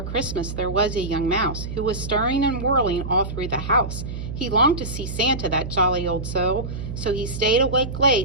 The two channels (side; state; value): right; noise; hum, 7 dB below the sound